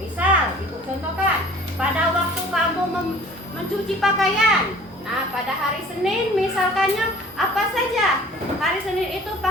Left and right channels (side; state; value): both; normal; correlation 0.48